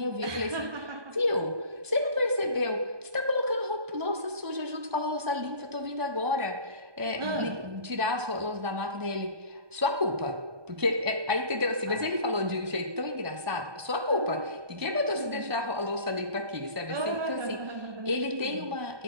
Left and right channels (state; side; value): late; left; 1.2 ms